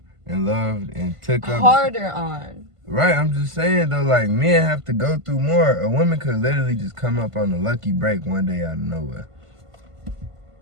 and loved and took up. Harder on. Right, I'm just saying though, like men have to go through more. A woman could literally just come up on a lucky break one day out of nowhere.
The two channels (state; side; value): late; left; 1.5 ms